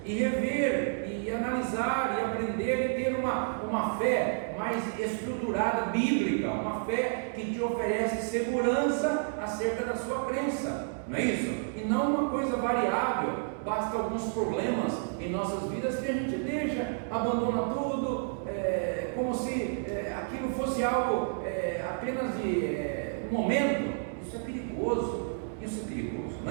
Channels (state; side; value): silent; left; digital silence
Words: e rever e analisar e aprender e ter uma fé mais estruturada, bíblica, uma fé que te oferece segurança acerca da sua crença, não é isso? E não uma coisa variável, basta alguns problemas em nossas vidas que a gente deixa, abandona tudo, como se aquilo fosse algo apenas de um momento. Isso é perigoso,